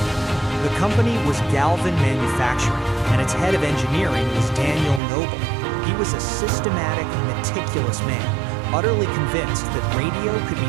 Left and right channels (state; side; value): drops out; left; at 5.0 s